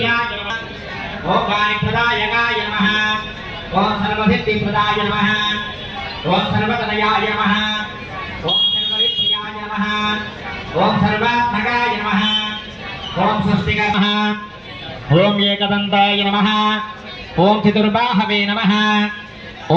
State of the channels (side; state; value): both; identical; correlation 1.00